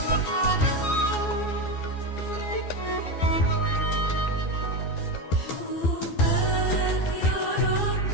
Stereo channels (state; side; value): late; right; 12 ms